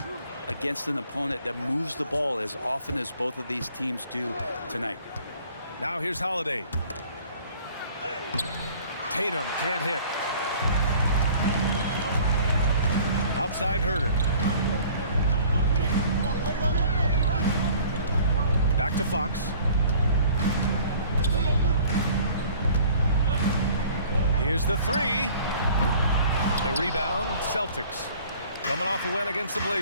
against an opponent that moves the ball as often as both of these teams do tonight. Now here's Holiday. Tatum can't hit. Outside Herter. Back to Fox. Here's the 3. The rebound, Celtics. Coming off a win against the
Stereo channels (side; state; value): both; inverted; correlation -0.51